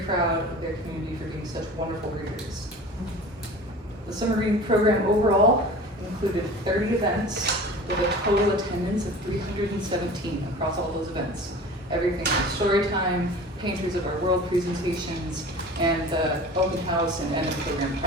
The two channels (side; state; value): both; normal; correlation 0.39